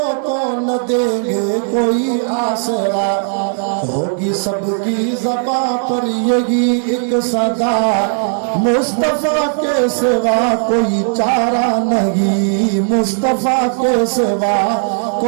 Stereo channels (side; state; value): left; silent; digital silence